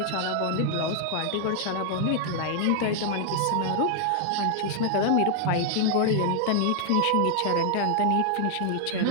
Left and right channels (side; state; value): both; different; correlation 0.00